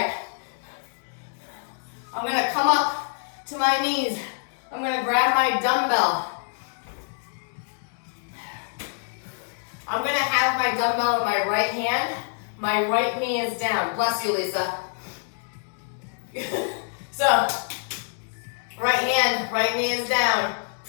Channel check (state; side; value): silent; right; 61 dB below the other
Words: I'm gonna come up to my knees. I'm gonna grab my dumbbell. I'm gonna have my dumbbell in my right hand. My right knee is down. Bless you, Lisa. So, right hand, right knee is down.